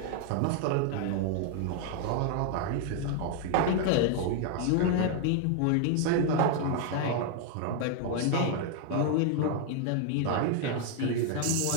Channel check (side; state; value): both; different; correlation 0.00